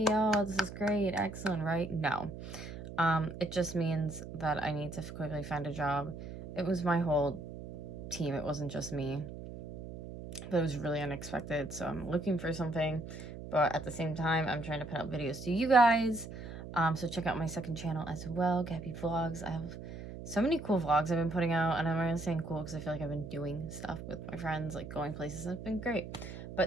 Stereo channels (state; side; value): noise; right; hum, 10 dB below the sound